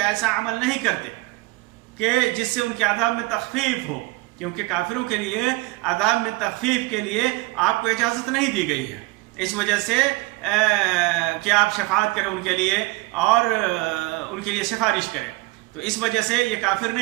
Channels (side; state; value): left; quieter; 22.8 dB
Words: ایسا عمل نہیں کرتے کہ جس سے ان کے عذاب میں تخفیف ہو، کیونکہ کافروں کے لیے عذاب میں تخفیف کے لیے آپ کو اجازت نہیں دی گئی ہے، اس وجہ سے کہ آپ شفاعت کریں ان کے لیے اور ان کے لیے سفارش کریں، تو اس وجہ سے یہ کافر